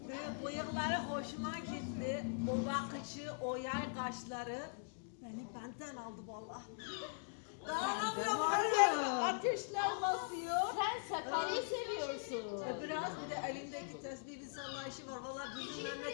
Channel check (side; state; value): right; silent; digital silence